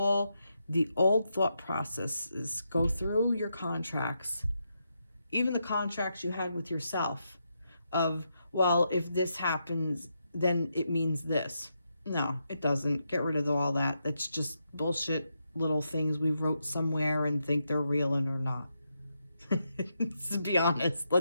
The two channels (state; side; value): inverted; both; correlation -0.83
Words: the old thought processes. Go through your contracts, even the contracts you had with yourself of, well, if this happens, then it means this. No, it doesn't. Get rid of all that. That's just bullshit little things we wrote somewhere and think they're real and are not. To be honest,